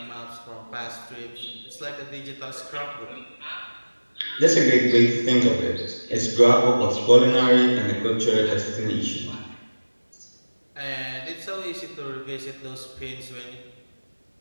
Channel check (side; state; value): both; inverted; correlation -1.00